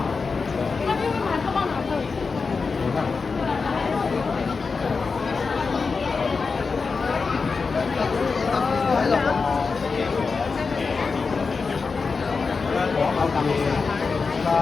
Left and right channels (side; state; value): right; quieter; 4.7 dB